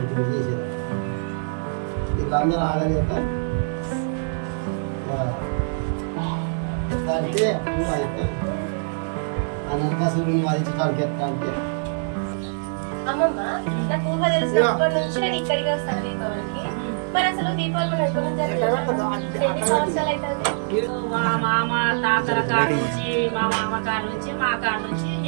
చేసేది. వీళ్ళందరూ ఆగలేక అంటే ఆ నరకాసురుడిని వధించడానికి ఎట్లా అంటే అమ్మమ్మ నాకు ఊహ తెలిసినప్పటి నుంచి నేను ఇక్కడికి వస్తాను దీపావళికి. మరి అసలు దీపావళి మనం ఎక్కడ ఎన్ని సంవత్సరాలు అవుతుంది? మా మామ తాతల కాడ నుంచి మా మామ కాడ నుంచి మా కాడ నుంచి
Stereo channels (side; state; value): left; silent; 63 dB below the other